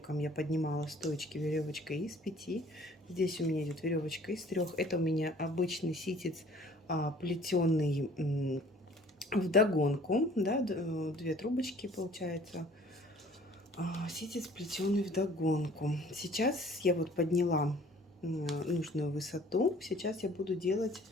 я поднимала стоечки веревочкой из 5. Здесь у меня идет веревочка из 3. Это у меня обычный ситец плетеный вдогонку, да, 2 трубочки получается. Ситец плетеный вдогонку. Сейчас я вот подняла нужную высоту. Сейчас я буду делать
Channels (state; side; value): normal; both; correlation 0.53